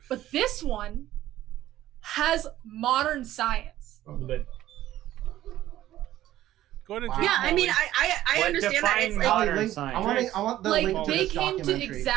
but this one has modern science. Go ahead and Wow. drink, Yeah, I mean, Molly. I What understand that. define It's like, modern link, science? I want the Like link to they this came to documentary.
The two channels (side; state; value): left; quieter; 13.8 dB